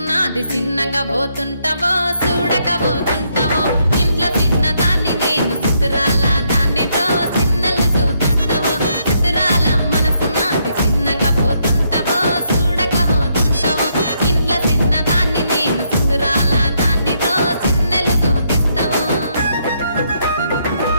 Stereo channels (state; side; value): inverted; both; correlation -0.75